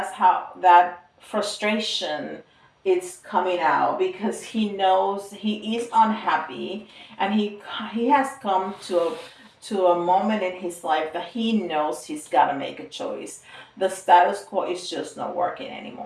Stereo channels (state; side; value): identical; both; correlation 1.00